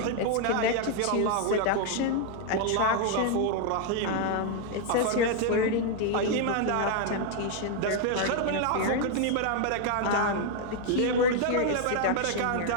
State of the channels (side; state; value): both; different; correlation 0.00